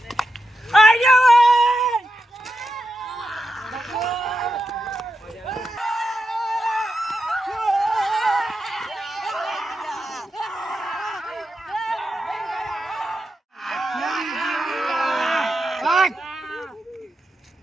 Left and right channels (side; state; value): both; normal; correlation 0.88